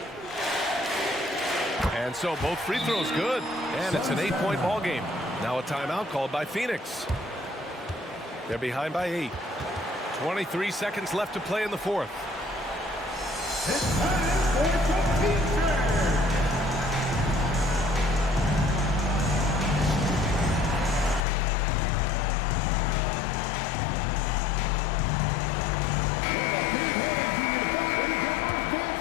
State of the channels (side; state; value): right; drops out; at 21.2 s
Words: And so both free throws good, and it's an 8-point ball game. Now a timeout called by Phoenix. They're behind by 8. 23 seconds left to play in the fourth. It's time for the future.